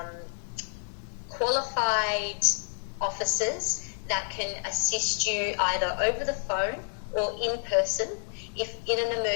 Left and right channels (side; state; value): right; silent; digital silence